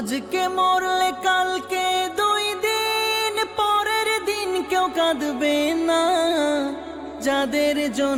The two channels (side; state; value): both; identical; correlation 1.00